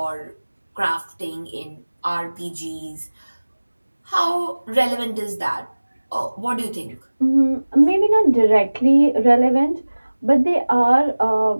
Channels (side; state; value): both; inverted; correlation -1.00